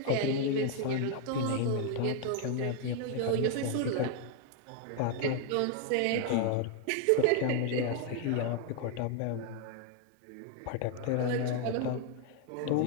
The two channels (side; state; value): both; different; correlation 0.01